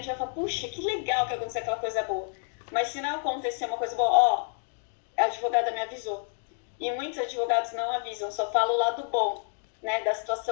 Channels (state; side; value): silent; right; 58 dB below the other